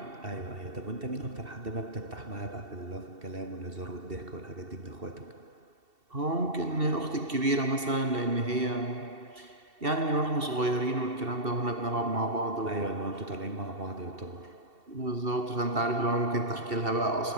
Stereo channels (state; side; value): late; left; 2.7 ms